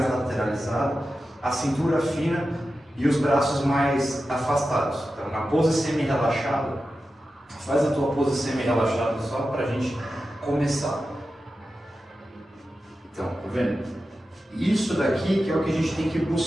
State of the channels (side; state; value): both; normal; correlation 0.92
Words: lateralizada, a cintura fina e os braços mais afastados. Então, na pose semi-relaxada, faz a tua pose semi-relaxada só para a gente começar. Então, tá vendo? Isso daqui que é o que a gente tem que